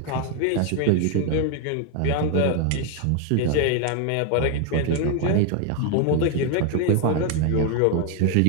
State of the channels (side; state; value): both; different; correlation 0.01